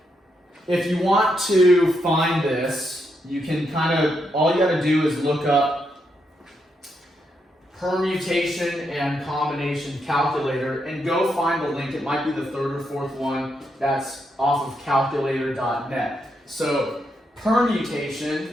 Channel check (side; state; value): both; normal; correlation 0.80